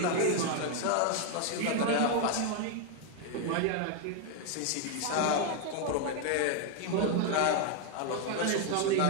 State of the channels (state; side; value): different; both; correlation 0.01